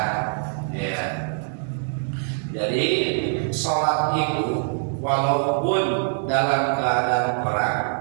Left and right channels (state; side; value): silent; left; digital silence